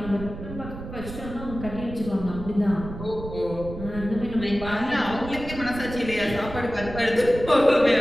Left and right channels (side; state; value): right; noise; rumble, 10 dB below the sound